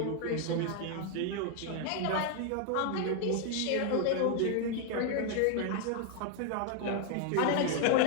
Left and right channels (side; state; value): both; different; correlation 0.01